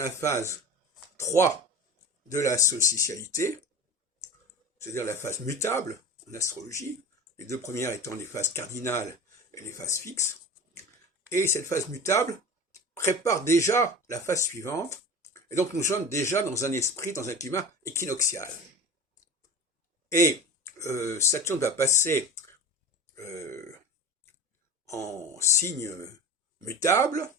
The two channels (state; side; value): normal; both; correlation 0.32